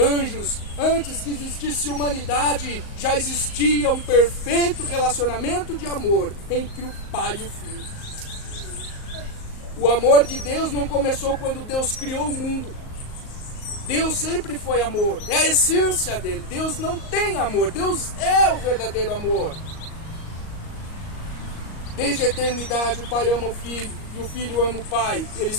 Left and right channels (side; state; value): right; late; 38 ms